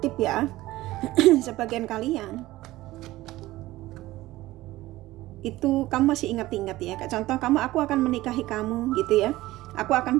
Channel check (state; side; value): quieter; left; 17.3 dB